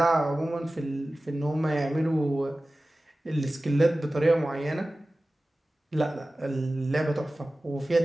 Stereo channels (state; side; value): normal; both; correlation 0.96